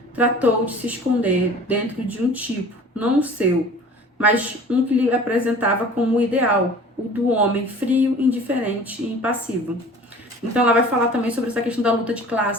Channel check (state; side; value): normal; both; correlation 0.44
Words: tratou de se esconder dentro de um tipo, não o seu, mas um que lhe apresentava como o ideal, o do homem frio, indiferente e impassivo. Então ela vai falar também sobre essa questão da luta de